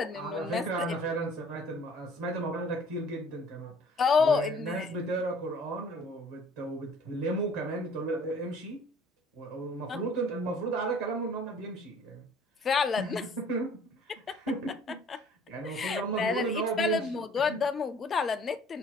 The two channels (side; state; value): both; normal; correlation 0.53